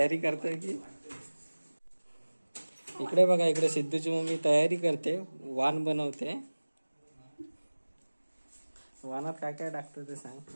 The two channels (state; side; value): inverted; both; correlation -1.00